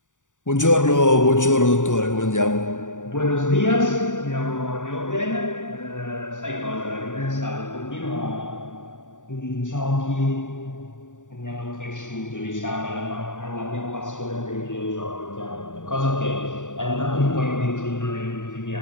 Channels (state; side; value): late; right; 0.86 ms